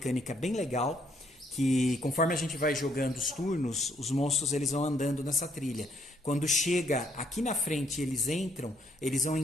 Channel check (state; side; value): normal; both; correlation 0.70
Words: bem legal, que conforme a gente vai jogando os turnos, os monstros eles vão andando nessa trilha. Quando chega aqui na frente eles entram, eles vão